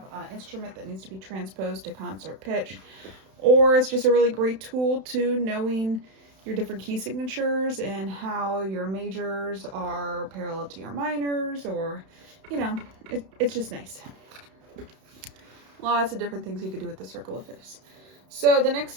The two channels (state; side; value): late; left; 31 ms